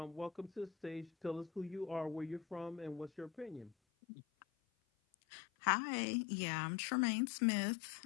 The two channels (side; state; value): right; drops out; at 3.8 s